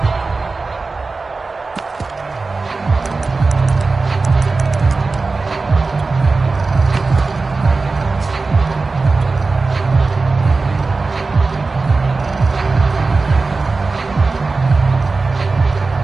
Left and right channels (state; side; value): quieter; left; 3.9 dB